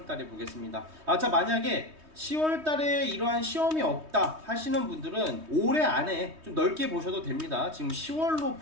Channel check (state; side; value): late; left; 3.2 ms